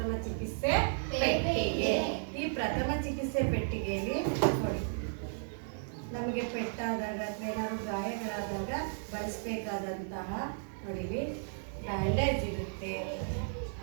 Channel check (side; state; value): left; silent; digital silence